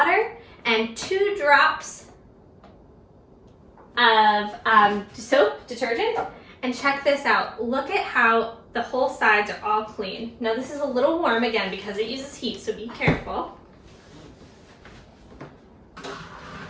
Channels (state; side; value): identical; both; correlation 1.00